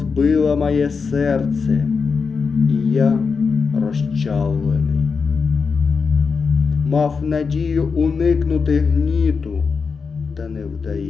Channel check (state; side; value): quieter; right; 5.2 dB